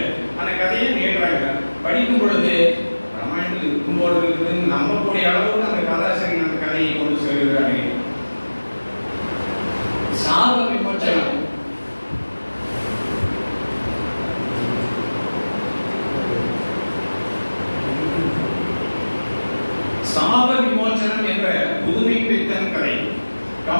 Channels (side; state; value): both; inverted; correlation -1.00